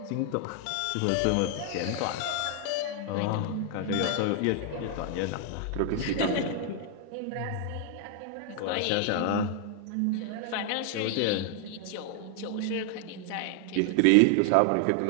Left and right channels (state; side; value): different; both; correlation 0.00